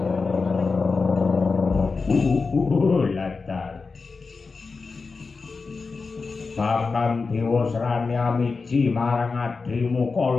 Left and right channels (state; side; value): quieter; right; 4.4 dB